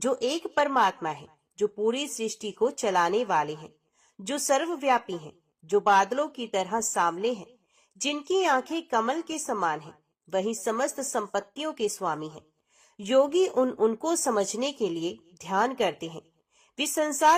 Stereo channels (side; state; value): both; identical; correlation 1.00